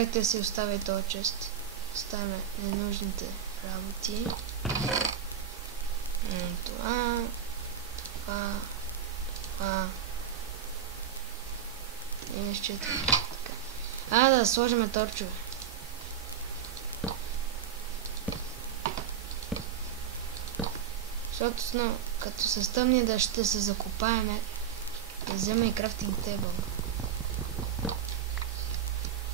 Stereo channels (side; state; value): left; quieter; 8.9 dB